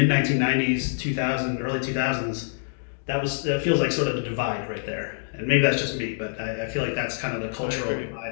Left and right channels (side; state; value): right; silent; digital silence